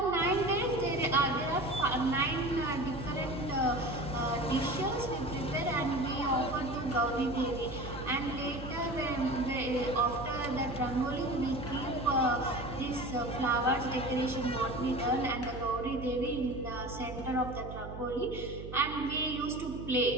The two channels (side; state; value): right; noise; hum, 10 dB below the sound